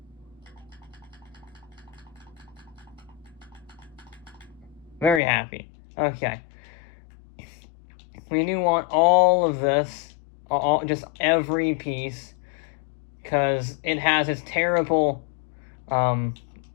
Very happy. Okay. We do want all of this, just every piece, because it has its terrible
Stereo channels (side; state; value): right; drops out; at 5.2 s